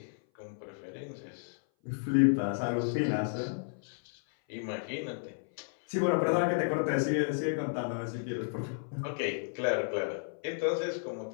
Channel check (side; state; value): right; silent; 56 dB below the other